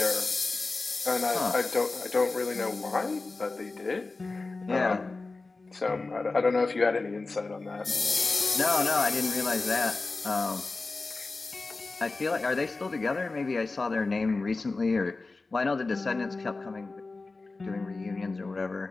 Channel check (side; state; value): right; quieter; 3.6 dB